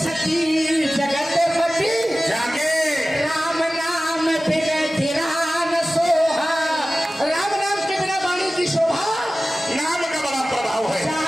सती जगत पति। जागे राम नाम बिना धिरान सोहा। राम नाम के बिना वाणी की शोभा। नाम का बड़ा प्रभाव है।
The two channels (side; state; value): both; normal; correlation 0.96